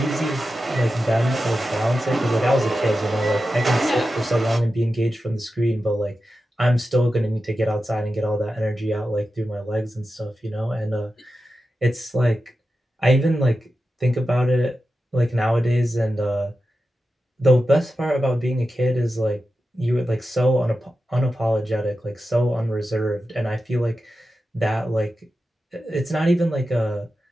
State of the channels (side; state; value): both; normal; correlation 0.92